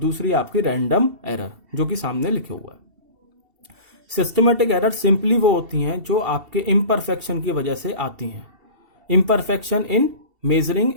आपकी रैंडम एरर, जो कि सामने लिखे हुआ है। सिस्टमेटिक एरर सिंपली वो होती हैं जो आपके इम्परफेक्शन की वजह से आती हैं। Imperfection in measuring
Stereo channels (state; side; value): late; left; 2.7 ms